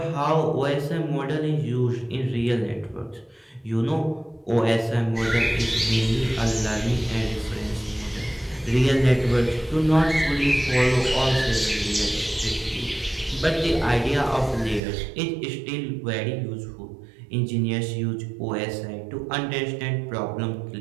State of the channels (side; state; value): left; drops out; at 14.8 s